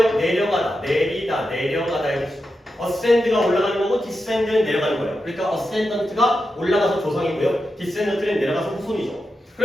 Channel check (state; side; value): normal; both; correlation 0.89